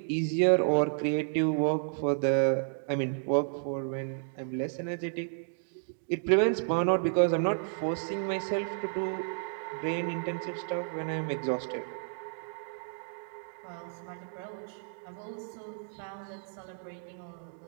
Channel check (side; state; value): left; silent; digital silence